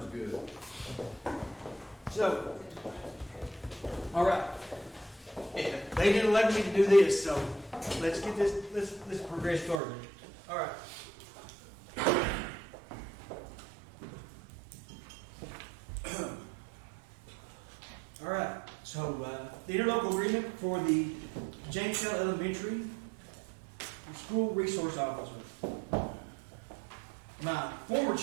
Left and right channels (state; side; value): drops out; left; at 9.8 s